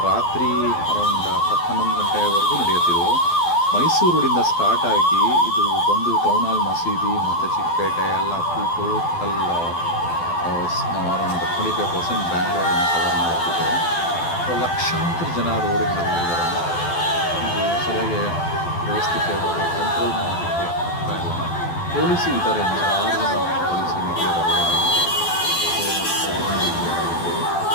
ರಾತ್ರಿ ಅರೌಂಡ್ 10-11 ಗಂಟೆವರೆಗೂ ನಡೆಯುತ್ತಿದ್ದು. ಮೈಸೂರು ರೋಡಿಂದ ಸ್ಟಾರ್ಟ್ ಆಗಿ ಇದು ಬಂದು ಟೌನ್ ಹಾಲ್ ಮಸೀದಿ ಮತ್ತು ಚಿಕ್ಕಪೇಟೆ ಎಲ್ಲ ಫುಲ್ ಟೋಟಲ್ ಅರೌಂಡ್ 25% ಬ್ಯಾಂಗ್ಳೂರನ್ನು ಕವರ್ ಮಾಡುತ್ತಿದೆ. ಸೊ ಲಕ್ಷಾಂತರ ಜನ ರೋಡಿಗೆ ಇಳಿದಿದ್ದಾರೆ. ಇದು ಸರಿಯಾಗಿ ವ್ಯವಸ್ಥಿತವಾಗಿ ಕಂಟ್ರೋಲ್ ಮಾಡೋದಕ್ಕೆ ಆಗ್ತಾ ಇಲ್ಲ. ಪೊಲೀಸರು ಇದ್ದಾರೆ, 106 ಜನ ಪೊಲೀಸರು ಇದ್ದಾರೆ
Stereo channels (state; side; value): late; right; 12 ms